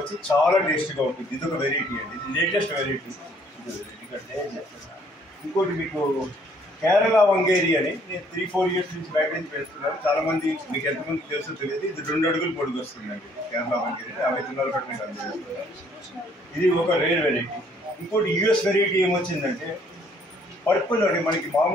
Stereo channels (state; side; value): normal; both; correlation 0.63